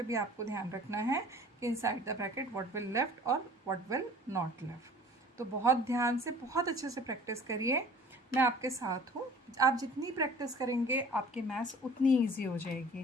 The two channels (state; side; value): normal; both; correlation 0.47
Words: भी आपको ध्यान रखना है कि inside the bracket what will left और व्हाट विल नॉट लेफ्ट। तो बहुत ध्यान से बहुत अच्छे से प्रैक्टिस करिए, मैं आपके साथ हूँ। आप जितनी प्रैक्टिस करेंगे आपकी मैथ्स उतनी ईजी हो